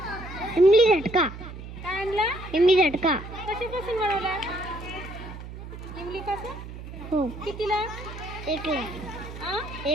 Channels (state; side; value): noise; right; hum, 12 dB below the sound